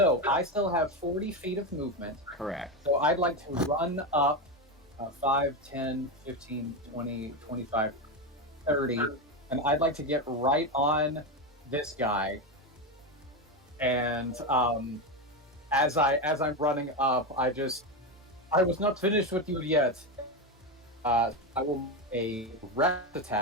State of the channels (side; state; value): both; normal; correlation 0.13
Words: I still have 40 feet of movement. Correct. So I'd like to run up 5, 10, 15, 20, 25, 30, and I'd like to get right on this guy and as I'm running up, I was not finished with you yet. I will make a rest